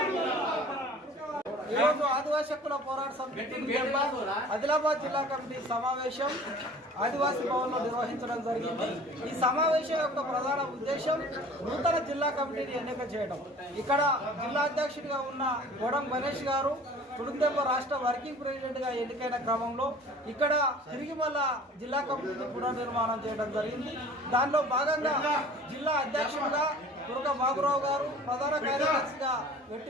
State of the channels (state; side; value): normal; both; correlation 0.46